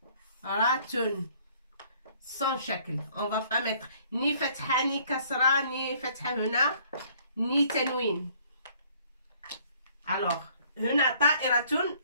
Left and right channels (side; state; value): both; inverted; correlation -0.59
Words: sans shakl. On va pas mettre ni fatha, ni kasra, ni fatha huna, ni tanwin. Alors, huna ta'iratun,